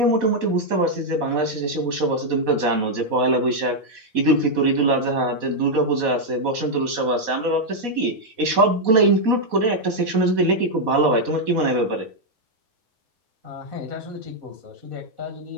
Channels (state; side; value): late; left; 4.1 ms